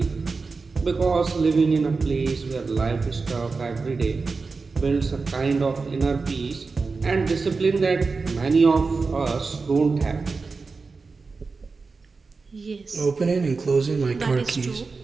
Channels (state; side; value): quieter; left; 4.3 dB